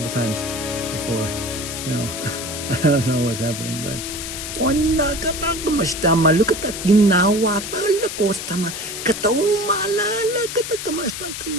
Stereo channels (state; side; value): noise; left; hiss, 7 dB below the sound